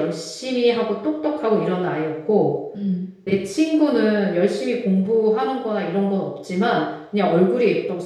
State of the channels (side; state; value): both; identical; correlation 1.00